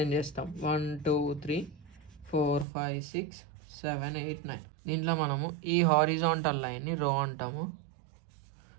చేస్తాం. 1 2 3 4 5 6 7 8 9. దీంట్లో మనము ఈ హారిజాంటల్ లైన్ని రో అంటాము,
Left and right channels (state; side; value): drops out; left; at 2.7 s